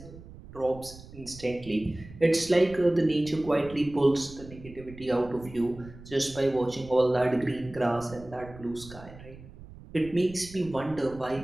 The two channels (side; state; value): right; noise; rumble, 17 dB below the sound